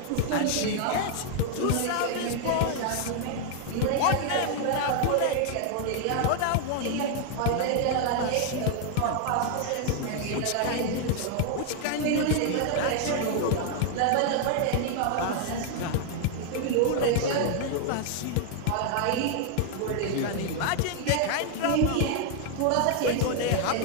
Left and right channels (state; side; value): different; both; correlation 0.00